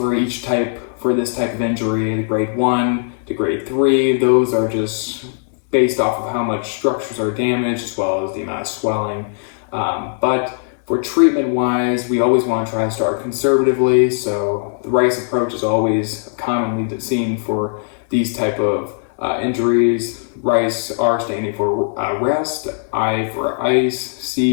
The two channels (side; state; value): right; silent; digital silence